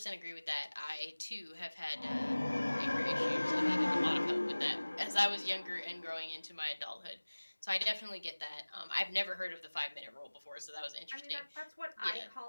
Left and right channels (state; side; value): inverted; both; correlation -1.00